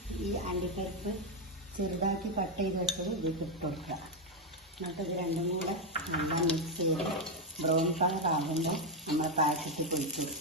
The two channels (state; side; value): normal; both; correlation 0.05